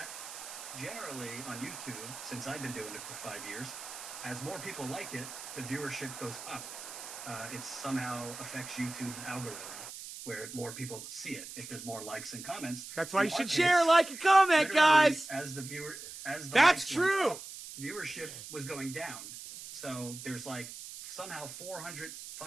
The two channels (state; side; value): noise; right; hiss, 11 dB below the sound